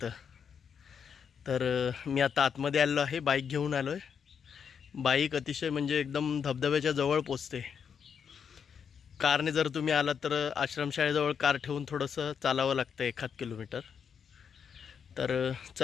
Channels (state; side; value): quieter; right; 7.1 dB